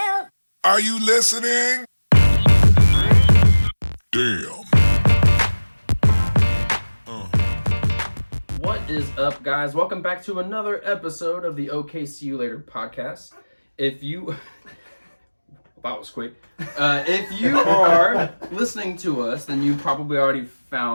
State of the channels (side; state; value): both; inverted; correlation -1.00